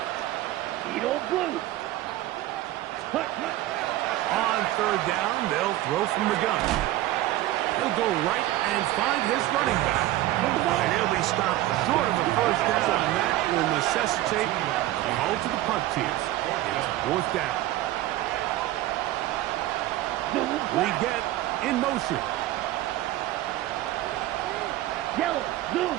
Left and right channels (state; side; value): quieter; left; 15.3 dB